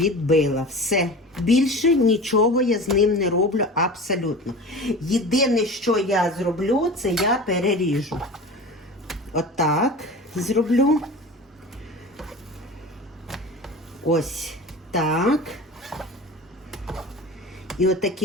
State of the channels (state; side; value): normal; both; correlation 0.35